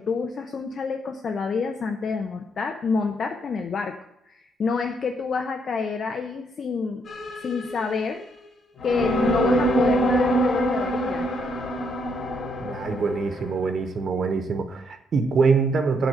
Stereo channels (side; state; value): both; normal; correlation 0.74